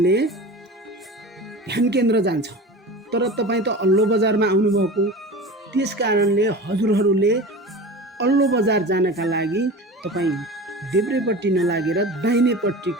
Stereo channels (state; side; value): normal; both; correlation 0.33